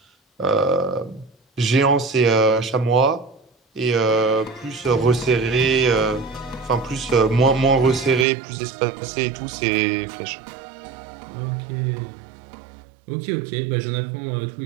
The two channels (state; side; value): drops out; left; at 8.2 s